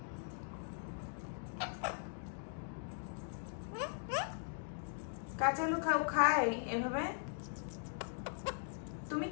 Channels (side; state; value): right; silent; digital silence